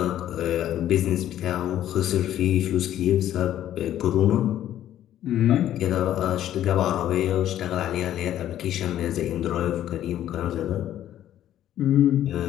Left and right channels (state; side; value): quieter; right; 11.9 dB